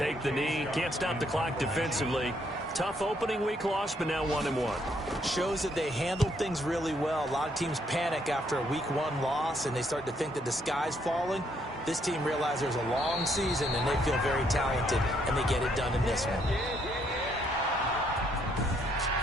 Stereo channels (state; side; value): normal; both; correlation 0.71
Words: the knee. Can't stop the clock defensively. Tough opening week loss, but now 1-1. Shows that they handled things really well. A lot of teams panic after a week 1 loss, and they start to think that the sky's falling. This team realizes there's a long season, and they feel very talented, and they get it done in this one.